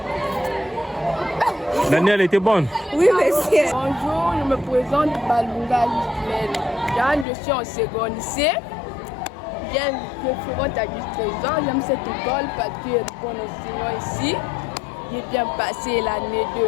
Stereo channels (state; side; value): drops out; right; at 7.2 s